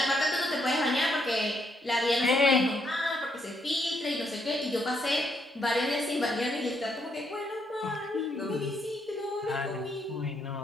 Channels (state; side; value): normal; both; correlation 0.74